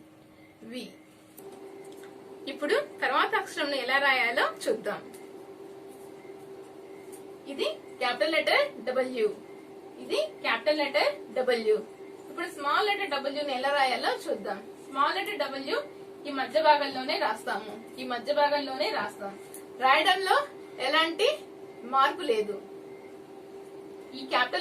వి. ఇప్పుడు తర్వాత అక్షరం ఎలా రాయాలో చూద్దాం. ఇది క్యాపిటల్ లెటర్ డబ్ల్యూ. ఇది క్యాపిటల్ లెటర్ డబ్ల్యూ. ఇప్పుడు స్మాల్ లెటర్ డబ్ల్యూ ని ఎలా రాయాలో చూద్దాం. స్మాల్ లెటర్ డబ్ల్యూ ఈ మధ్య భాగంలోనే రాస్తాము. ఈ మధ్య భాగంలోనే రాస్తాం. రాయడంలో ఎలాంటి మార్పు లేదు. ఈ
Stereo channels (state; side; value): identical; both; correlation 1.00